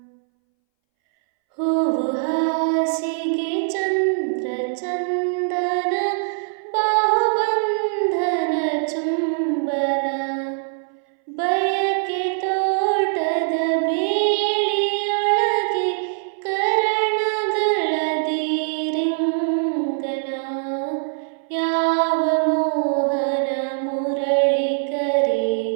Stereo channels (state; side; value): silent; left; 62 dB below the other